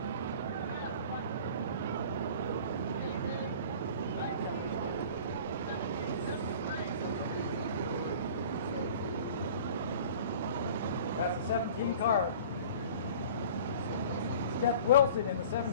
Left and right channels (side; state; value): both; inverted; correlation -0.44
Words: That's the 17 car. Steph Wilson in the